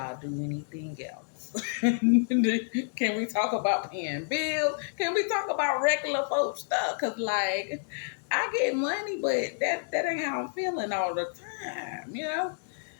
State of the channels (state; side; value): silent; right; digital silence